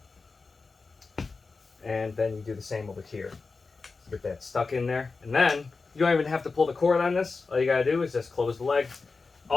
and then you do the same over here. Get that stuck in there, and then you don't even have to pull the cord on this. All you gotta do is just close the leg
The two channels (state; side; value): quieter; right; 4.2 dB